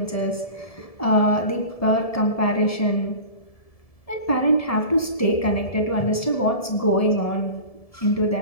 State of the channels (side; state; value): right; late; 1.7 ms